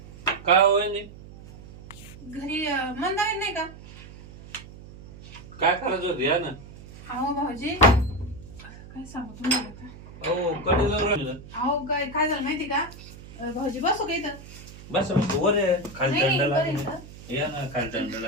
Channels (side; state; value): right; noise; hum, 17 dB below the sound